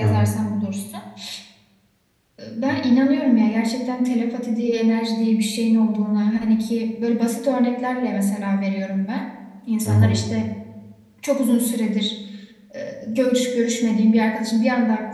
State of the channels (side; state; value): both; identical; correlation 1.00